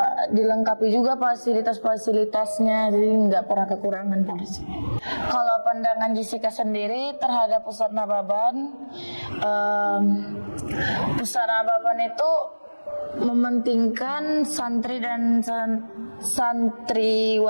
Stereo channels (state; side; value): inverted; both; correlation -1.00